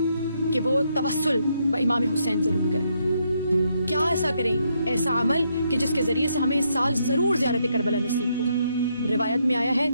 کہ وہ توسل امام حسین ضرور کریں۔ کیا ایسا کریں؟ ایسا عمل کہ جس کے ذریعے سے ہمیں اس سال ضرور زیارت کربلا نصیب ہو۔ روایت میں آیا ہے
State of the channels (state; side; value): inverted; both; correlation -0.76